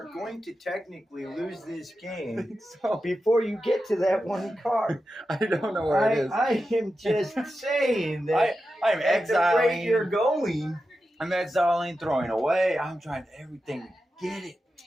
going to technically lose this game So before you get to that 1 card. I don't know where it is. I am just saying that I'm at the rate you're exiling. going. I'm exiling, throwing away. I'm trying everything to get it.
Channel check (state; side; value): normal; both; correlation 0.91